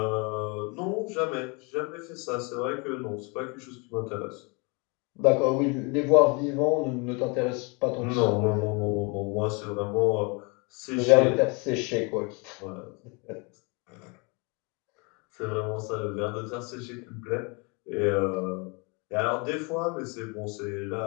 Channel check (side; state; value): right; quieter; 31.0 dB